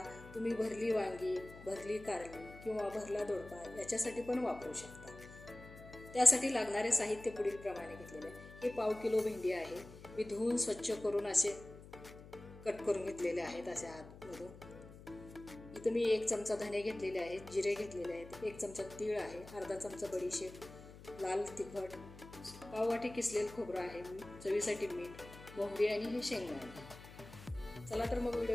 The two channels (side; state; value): left; noise; hum, 17 dB below the sound